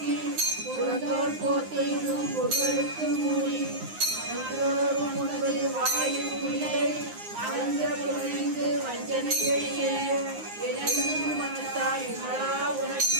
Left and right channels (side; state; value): left; late; 9.6 ms